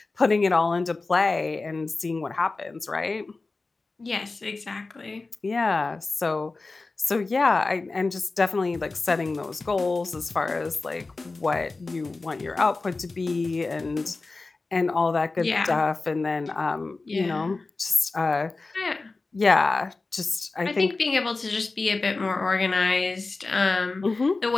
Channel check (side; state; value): right; quieter; 3.6 dB